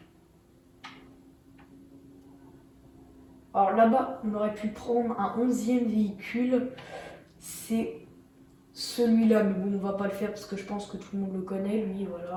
Alors là-bas, on aurait pu prendre un 11e véhicule. c'est celui-là. Mais bon, on va pas le faire parce que je pense que tout le monde le connaît. Lui,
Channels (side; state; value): both; identical; correlation 1.00